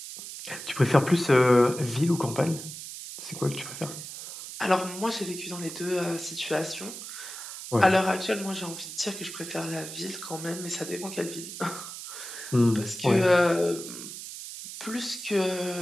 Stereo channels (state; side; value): noise; right; hiss, 10 dB below the sound